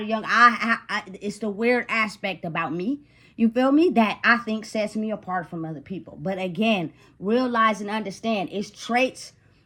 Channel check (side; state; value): both; identical; correlation 1.00